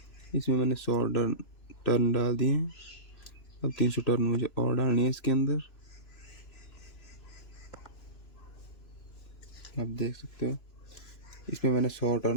इसमें मैंने 100 टर्न डाल दिए हैं। अब 300 टर्न मुझे और डालनी है इसके अंदर। आप देख सकते हो इसमें मैंने 100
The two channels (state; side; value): late; right; 3.0 ms